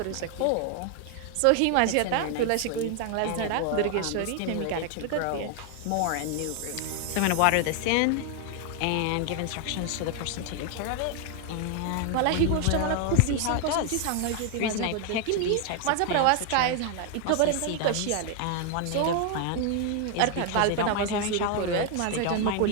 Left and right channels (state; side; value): different; both; correlation 0.01